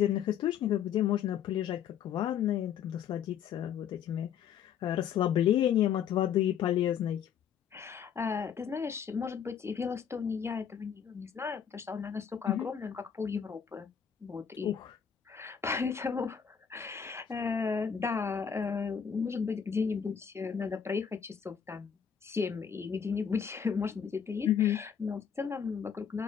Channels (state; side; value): quieter; right; 8.0 dB